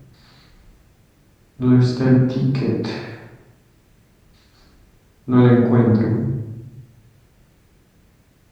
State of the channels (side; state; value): both; identical; correlation 1.00